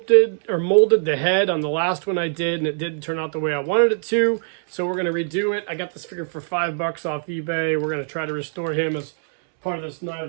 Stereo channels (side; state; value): left; silent; 64 dB below the other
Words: or molded the head on the last one I did, and it didn't turn out the way I wanted it to. So we're going to redo it. I got this figure for $5 off eBay. We're going to try to restore him as part of this Night